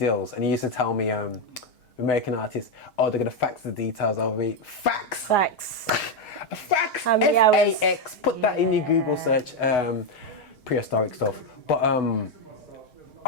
and he used to tell me, American artists, they're gonna fax the details over me. Fax. Fax. F-A-X. Put that in your Google search. Prehistoric stuff. But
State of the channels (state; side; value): late; right; 6.4 ms